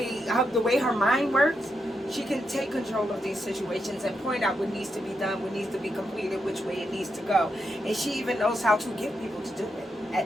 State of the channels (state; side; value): normal; both; correlation 0.83